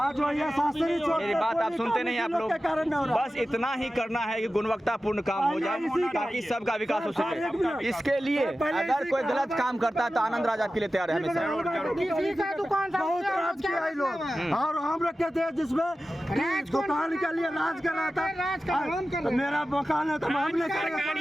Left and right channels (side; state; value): both; normal; correlation 0.94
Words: वो ये शास्त्री चौक मेरी पे बात कोई आप सुनते नहीं, आप काम लोग के कारण नहीं हो रहा। बस इतना ही करना है कि गुणवत्तापूर्ण काम हो जाए ताकि सबका विकास हो सके। इसके लिए अगर कोई गलत काम करता है तो आनंद राज आपके लिए तैयार है हमेशा। किसी का दुकान था बहुत राज किया है लोग, और हम रखे थे जिसमें दुकान के लिए राज कर रहा था। मेरा मकान है तो हम नहीं